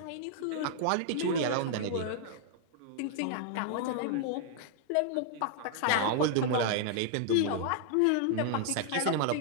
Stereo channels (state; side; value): different; both; correlation -0.01